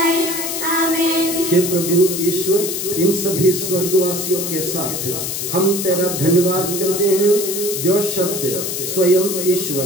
आमीन। हे प्रभु ईश्वर, इन सभी स्वर्गवासियों के साथ हम तेरा धन्यवाद करते हैं, जो शब्द स्वयं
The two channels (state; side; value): noise; left; hiss, 4 dB below the sound